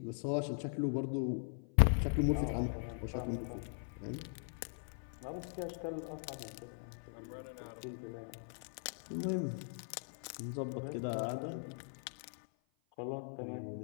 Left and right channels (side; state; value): right; silent; 51 dB below the other